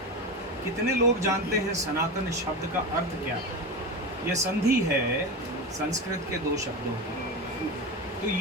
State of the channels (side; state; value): both; normal; correlation 0.21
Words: कितने लोग जानते हैं सनातन शब्द का अर्थ क्या है? ये संधि है संस्कृत के दो शब्दों की। तो